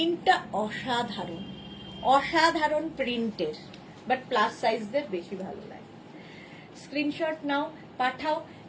অসাধারণ, অসাধারণ প্রিন্টের, বাট প্লাস সাইজদের বেশি ভালো লাগে। স্ক্রিনশট নাও, পাঠাও,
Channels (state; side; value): identical; both; correlation 1.00